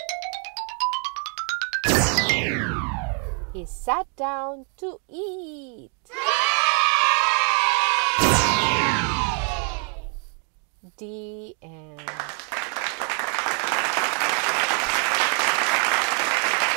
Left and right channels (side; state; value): left; quieter; 40.0 dB